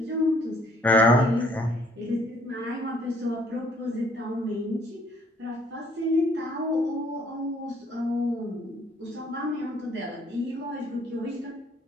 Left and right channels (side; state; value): both; normal; correlation 0.63